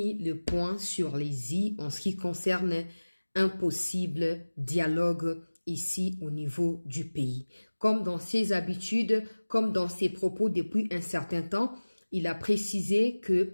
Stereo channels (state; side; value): inverted; both; correlation -1.00